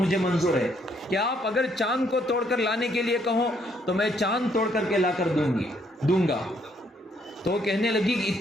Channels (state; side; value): normal; both; correlation 0.70